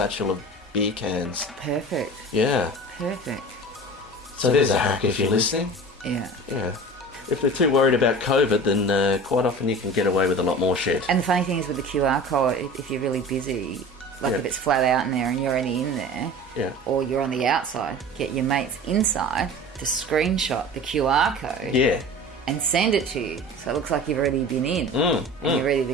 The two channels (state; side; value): normal; both; correlation 0.37